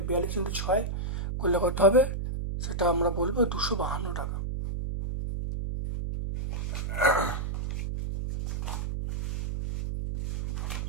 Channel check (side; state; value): right; noise; hum, 3 dB below the sound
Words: 42 × 6 করলে কত হবে, সেটা আমরা বলবো 252 টাকা।